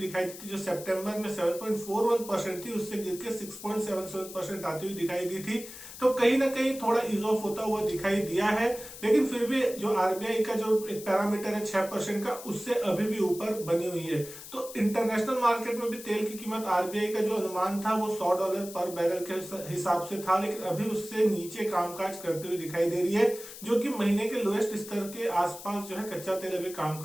दी थी, जो सितंबर में 7.41% थी उससे गिर के 6.77% आती हुई दिखाई दी थी, तो कहीं ना कहीं थोड़ा इज ऑफ होता हुआ दिखाई दिया है। लेकिन फिर भी जो आरबीआई का जो एक पैरामीटर है 6% का उससे अभी भी ऊपर बनी हुई है। तो इंटरनेशनल मार्केट में भी तेल की कीमत आरबीआई का जो अनुमान था वो $100 पर बैरल के हिसाब से था, लेकिन अभी उससे नीचे कामकाज करते हुए दिखाई दे रही है, जो कि महीने के लोएस्ट स्तर के आसपास जो है कच्चा तेल अभी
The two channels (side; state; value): left; noise; hiss, 14 dB below the sound